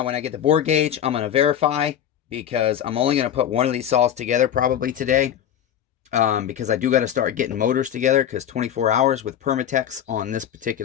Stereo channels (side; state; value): right; quieter; 10.0 dB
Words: when I get the bore gauge, I'm going to verify, because I'm only going to put one of these saws together probably today. Because I do got to start getting motors together, because 24 hours with Permatex on this